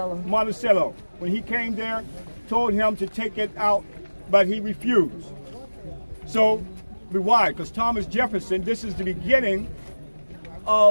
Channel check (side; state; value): both; inverted; correlation -1.00